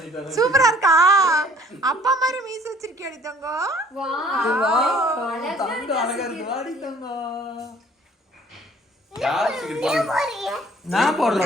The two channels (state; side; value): normal; both; correlation 0.55